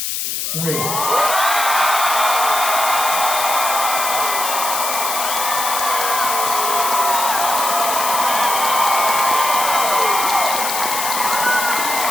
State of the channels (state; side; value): noise; left; hiss, 2 dB below the sound